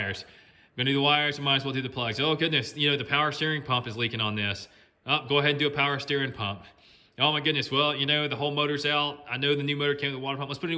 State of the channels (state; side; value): identical; both; correlation 1.00